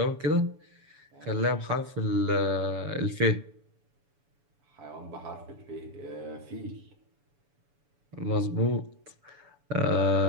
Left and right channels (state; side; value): late; left; 7.0 ms